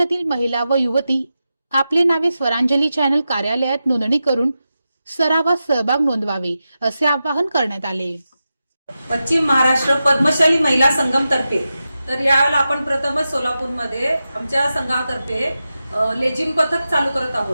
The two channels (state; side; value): inverted; both; correlation -0.91